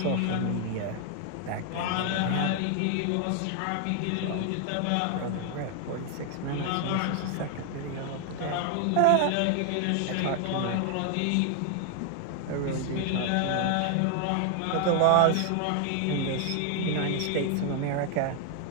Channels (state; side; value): different; both; correlation 0.00